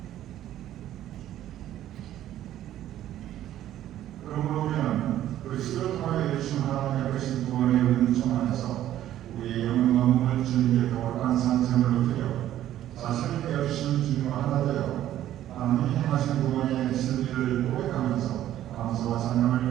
그러므로 우리는 그리스도를 통하여 주신 하나님의 크신 구원의 은총 안에서 우리의 영혼과 몸을 주님께 거룩한 산제물로 드려 자신을 깨우치신 주님과 하나 되어 하나님이 행하신 구원의 진리를 고백하면서 감사와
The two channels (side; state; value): left; quieter; 12.5 dB